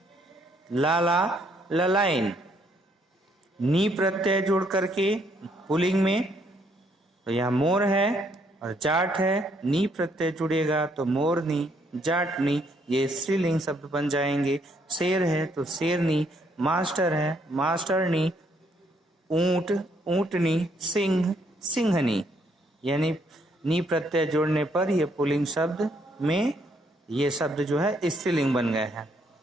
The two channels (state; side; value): normal; both; correlation 0.70